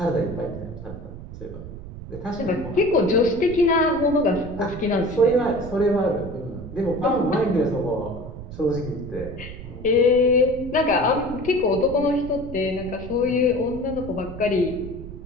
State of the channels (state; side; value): noise; right; rumble, 12 dB below the sound